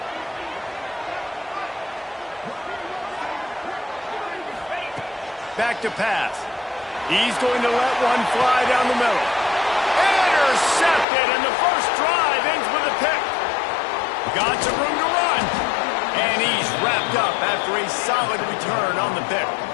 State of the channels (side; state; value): right; drops out; at 11.1 s